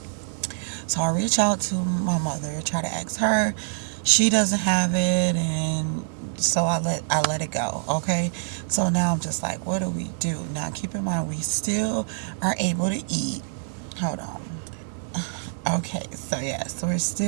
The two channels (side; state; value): left; silent; digital silence